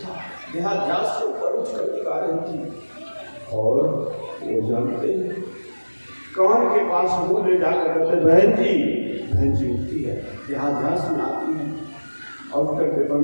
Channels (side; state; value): both; inverted; correlation -1.00